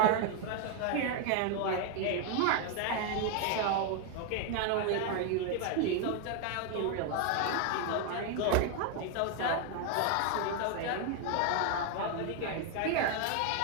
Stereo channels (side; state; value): both; different; correlation 0.01